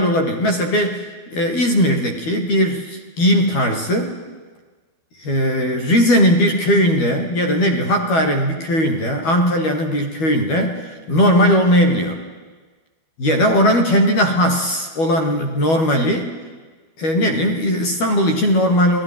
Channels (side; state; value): right; late; 12 ms